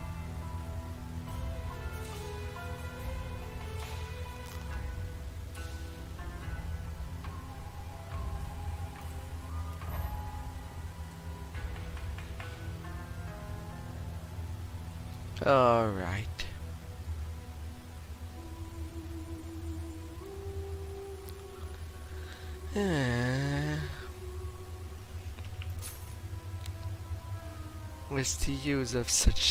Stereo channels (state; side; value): identical; both; correlation 1.00